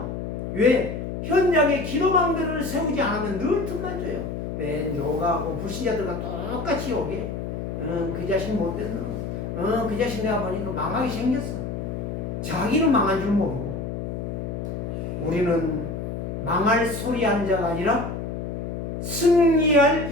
왜? 현장에 기도망대를 세우지 않으면 늘 틈만 줘요. 맨 요가하고 불신자들과 똑같이 오게 그 자식 못됐노. 그 자식 내가 보니까 망하게 생겼어. 자기는 망한 줄 모르고. 우리는 망할 소리 하는 자가 아니라 승리할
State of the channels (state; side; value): noise; left; hum, 5 dB below the sound